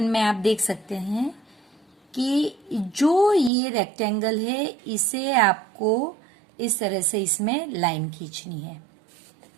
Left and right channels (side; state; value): left; drops out; at 3.5 s